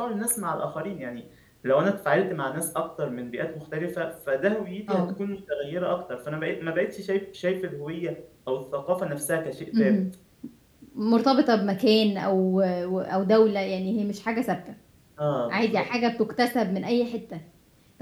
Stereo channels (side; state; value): both; identical; correlation 1.00